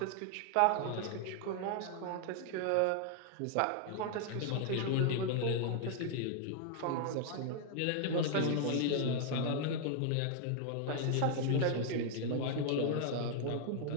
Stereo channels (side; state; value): both; different; correlation 0.00